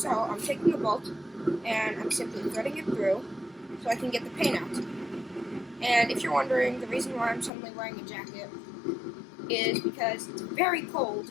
So I'm taking the bolt and I'm simply threading it through so I can get the paint out. And if you're wondering, the reason why I'm suddenly wearing a jacket is because it's very cold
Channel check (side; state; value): right; drops out; at 7.5 s